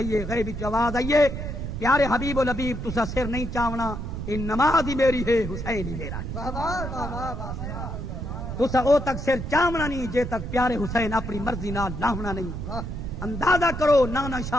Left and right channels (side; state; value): right; noise; rumble, 6 dB below the sound